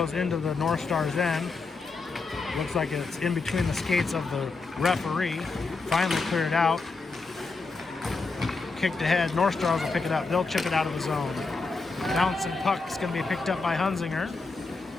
into the North Stars end. Looks like it's in between the skates of the referee. Finally cleared out. Kicked ahead. North Stars will pick it up. They'll chip it out of the zone. Bouncing puck is going to be picked up by Hunzinger.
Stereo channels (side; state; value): right; quieter; 4.0 dB